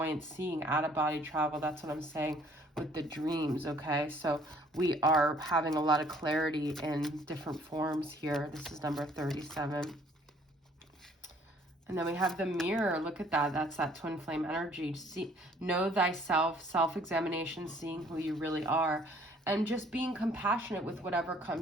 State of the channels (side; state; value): both; normal; correlation 0.59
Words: seeing, out-of-body travel. That's what I'm saying with the dreams, okay? So we are having a lot of clarity in different forms here. This is number 37. And then we have the mirror. Look at that. That's that twin flame energy. See, know thyself, self-examination, seeing who you really are, and just being compassionate with whatever